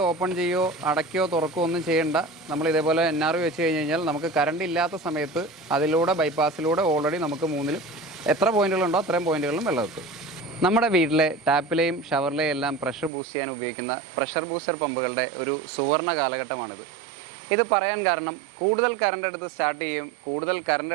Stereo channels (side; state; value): left; drops out; at 13.1 s